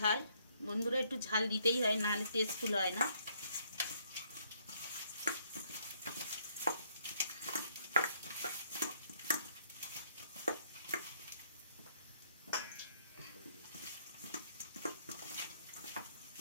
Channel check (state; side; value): inverted; both; correlation -0.69